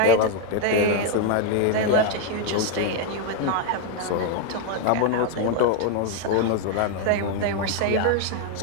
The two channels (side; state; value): both; different; correlation 0.01